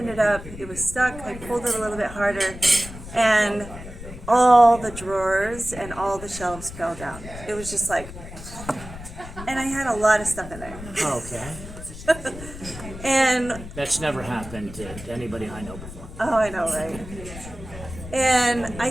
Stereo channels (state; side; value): noise; left; rumble, 13 dB below the sound